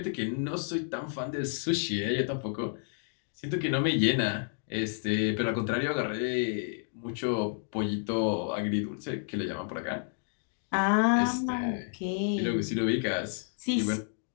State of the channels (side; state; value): right; silent; digital silence